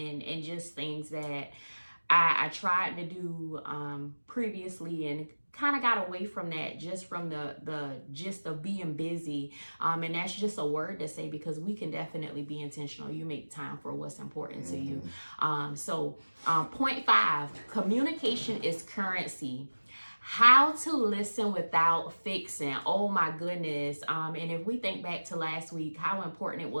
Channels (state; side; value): inverted; both; correlation -1.00